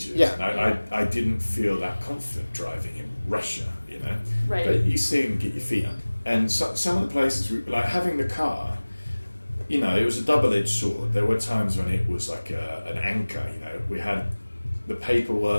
Yeah. And I didn't feel that confident driving in Russia, Right. But you see them get your feet up. And some of the places, like having the car, it was a double-edged sword. There were times when it was like an anchor, We had the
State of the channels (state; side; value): inverted; both; correlation -1.00